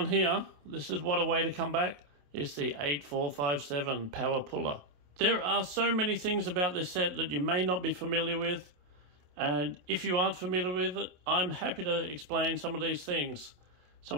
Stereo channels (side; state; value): left; late; 27 ms